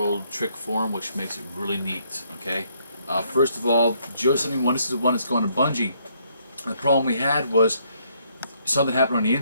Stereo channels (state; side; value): inverted; both; correlation -0.70